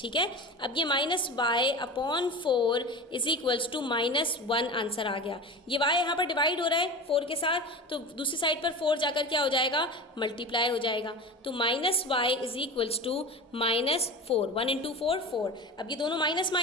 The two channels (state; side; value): normal; both; correlation 0.31